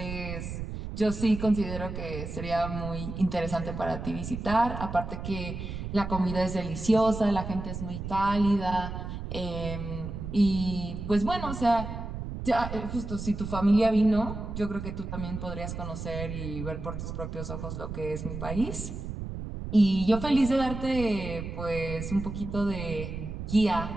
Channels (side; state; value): right; noise; rumble, 7 dB below the sound